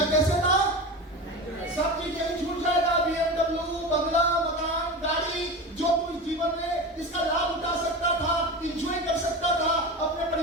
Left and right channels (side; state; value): both; normal; correlation 0.26